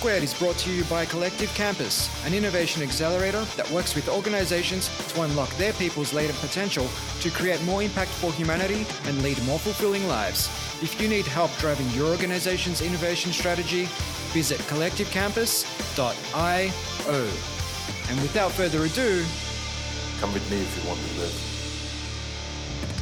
is brought to you by Collective Campus, an innovation accelerator that works with organizations to unlock their people's latent potential to create more impact for humanity and lead more fulfilling lives. If you need help driving your organization's innovation strategy, visit collectivecampus.io. And without further ado, come with me if you want to live.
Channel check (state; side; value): identical; both; correlation 1.00